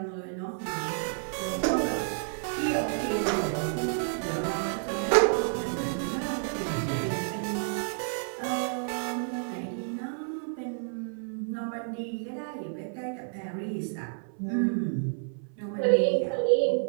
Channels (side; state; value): left; silent; 58 dB below the other